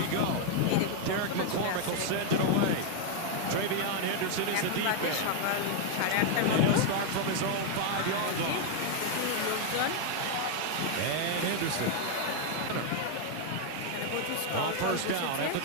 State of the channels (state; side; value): different; both; correlation 0.00